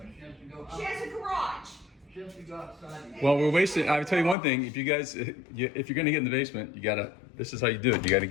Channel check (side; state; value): right; drops out; at 4.4 s